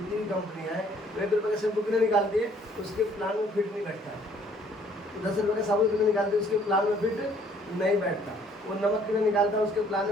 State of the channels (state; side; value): normal; both; correlation 0.61